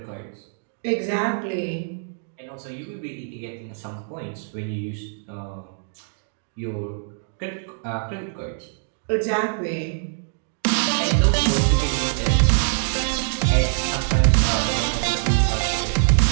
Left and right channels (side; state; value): left; silent; 63 dB below the other